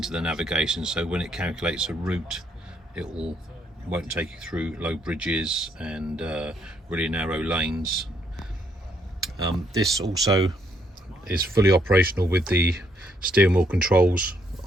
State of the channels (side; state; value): both; normal; correlation 0.72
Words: the navigation, so when it calculates a route, it won't take you through low bridges and really narrow lanes. This also is fully operational with the steering wheel controls